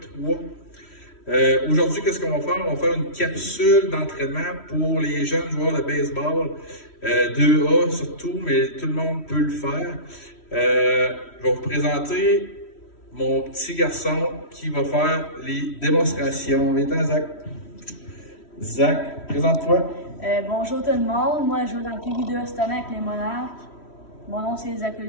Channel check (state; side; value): late; right; 3.1 ms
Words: Aujourd'hui, qu'est-ce qu'on va faire? On va faire une capsule d'entraînement pour les jeunes joueurs de baseball, 2A surtout, mais tout le monde peut le faire. Je vais vous présenter mon petit garçon qui va faire les démonstrations. Viens-t'en, Zach. Zach, présente-toi. Bonjour tout le monde, moi je joue dans le PV2 cette année avec les Monarques. Mon nom c'est Zach